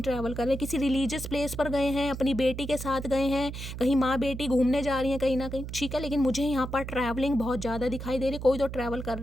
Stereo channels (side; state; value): right; noise; hum, 8 dB below the sound